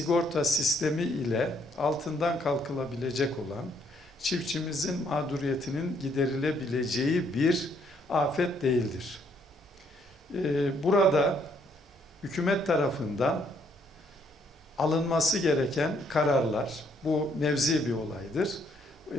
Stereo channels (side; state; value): both; normal; correlation 0.69